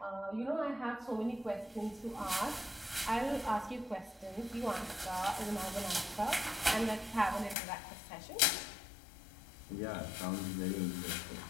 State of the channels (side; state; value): right; drops out; at 7.6 s